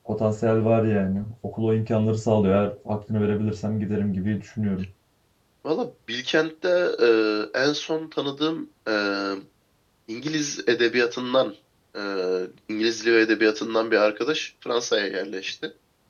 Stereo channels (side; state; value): both; identical; correlation 1.00